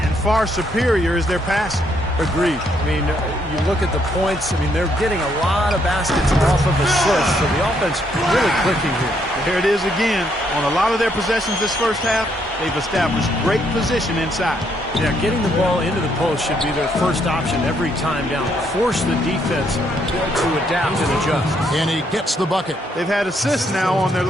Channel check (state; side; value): normal; both; correlation 0.73